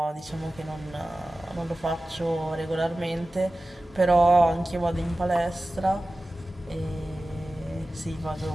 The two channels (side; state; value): both; normal; correlation 0.96